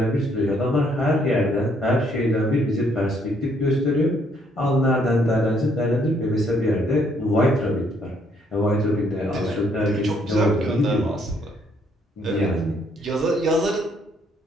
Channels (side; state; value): both; normal; correlation 0.68